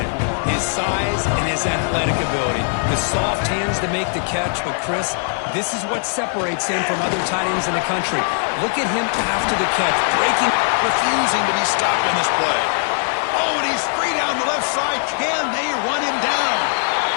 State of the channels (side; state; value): right; silent; 57 dB below the other